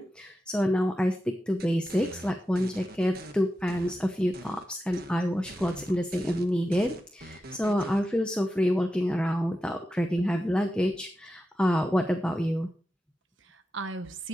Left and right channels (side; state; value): both; normal; correlation 0.91